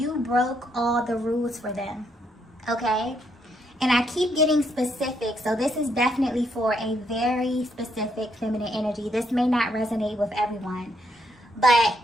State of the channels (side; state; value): both; normal; correlation 0.75